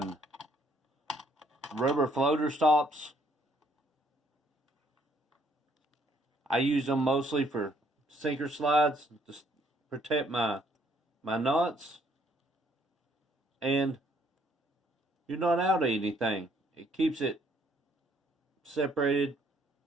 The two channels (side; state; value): both; normal; correlation 0.66